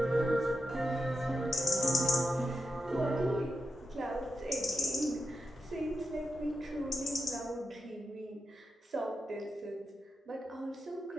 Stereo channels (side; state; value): both; normal; correlation 0.87